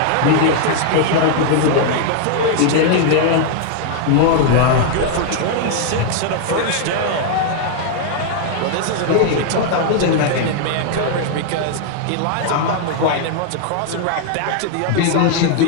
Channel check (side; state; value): both; different; correlation 0.00